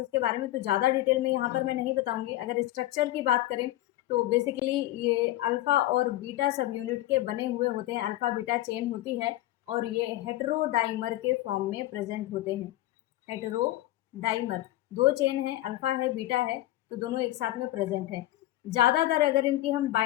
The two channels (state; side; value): quieter; right; 15.7 dB